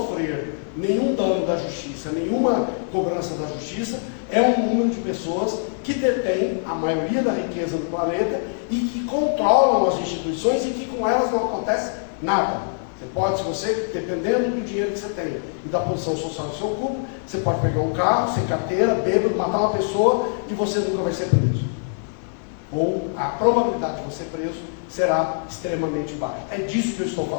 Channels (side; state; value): right; silent; digital silence